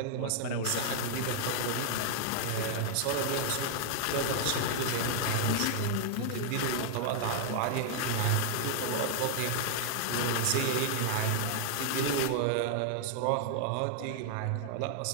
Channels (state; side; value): different; both; correlation 0.00